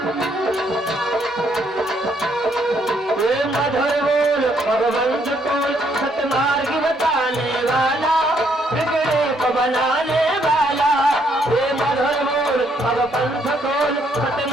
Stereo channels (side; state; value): both; normal; correlation 0.71